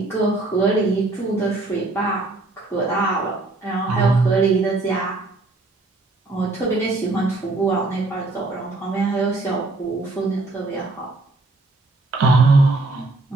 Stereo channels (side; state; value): left; quieter; 3.2 dB